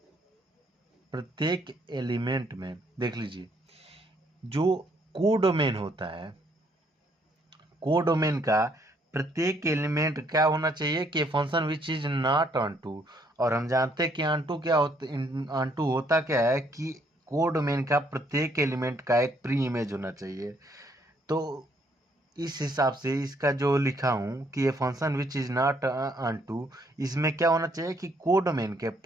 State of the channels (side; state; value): both; normal; correlation 0.69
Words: प्रत्येक एलिमेंट में देख लीजिए, जो कोडोमेन होता है, कोडोमेन का प्रत्येक एलिमेंट क्या होना चाहिए कि function which is not onto. और हम जानते हैं कि ऑन टू क्या होता, ऑन टू होता क्या है कि कोडोमेन का प्रत्येक एलिमेंट का एक प्री इमेज होना चाहिए। तो इस हिसाब से इसका जो लिखा हूं कि ये function which is not onto, इसमें क्या होना चाहिए कि कोडोमेन के